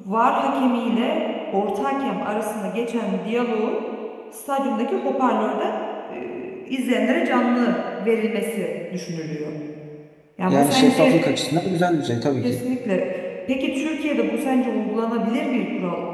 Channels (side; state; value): both; identical; correlation 1.00